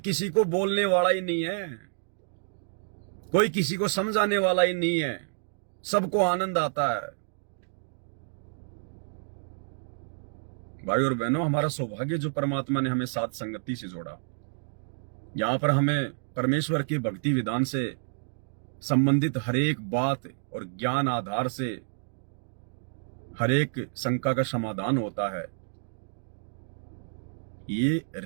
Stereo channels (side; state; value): left; silent; digital silence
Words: को बोलने वाला ही नहीं है, कोई किसी को समझाने वाला ही नहीं है, सबको आनंद आता है। भाई और बहनों, हमारा सौभाग्य जो परमात्मा ने हमें साथ संगति से जोड़ा। यहां पर हमें परमेश्वर के भक्ति विधान से संबंधित हर एक बात और ज्ञान आधार से हर एक शंका का समाधान होता है। ये